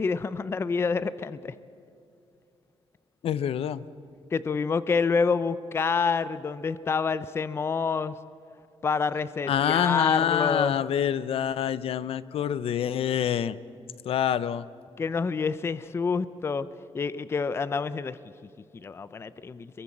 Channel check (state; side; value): quieter; right; 6.1 dB